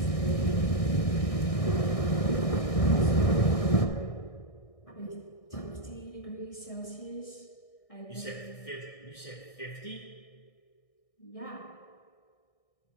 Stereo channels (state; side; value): late; right; 1.6 ms